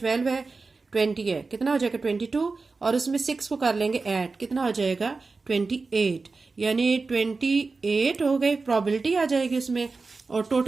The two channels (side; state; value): left; quieter; 4.0 dB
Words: है, 20 है, कितना हो जाएगा 22, और उसमें 6 को कर लेंगे ऐड, कितना हो जाएगा 28, यानी 28 हो गए, प्रोबेबिलिटी आ जाएगी उसमें, और